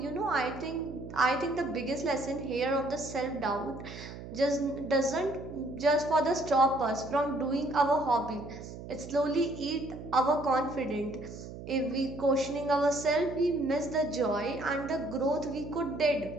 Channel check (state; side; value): noise; right; hum, 12 dB below the sound